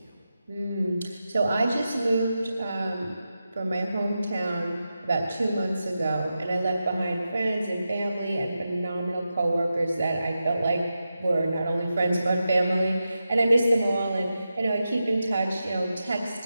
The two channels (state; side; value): inverted; both; correlation -0.90